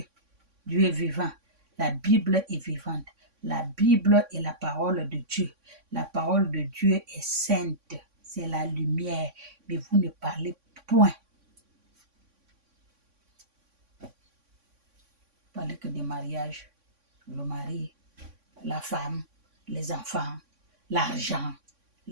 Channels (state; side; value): late; left; 3.5 ms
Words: Dieu est vivant. La Bible est vivante. La Bible est la parole de Dieu. La parole de Dieu est sainte. C'est la lumière. Mais vous ne parlez point. Vous parlez que des mariages. Le mari, la femme, les enfants, l'argent,